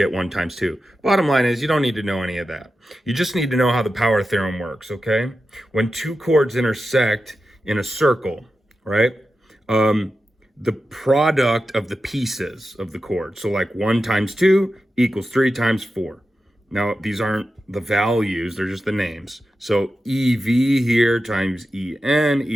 1 times 2. Bottom line is you don't need to know any of that. You just need to know how the power theorem works, okay? When two chords intersect in a circle, right? The product of the pieces of the chord. So like 1 times 2 equals 3 times 4. Now, these aren't the values, they're just the names. So EV here times EN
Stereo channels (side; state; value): both; normal; correlation 0.91